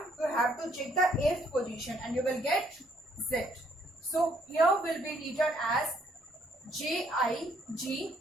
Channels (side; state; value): both; normal; correlation 0.67